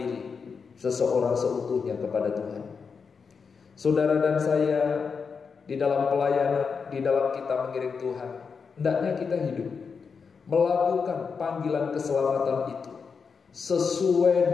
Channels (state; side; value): quieter; right; 5.6 dB